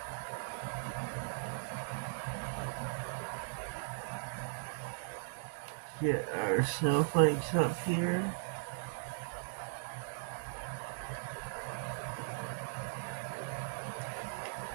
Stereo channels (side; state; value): left; silent; digital silence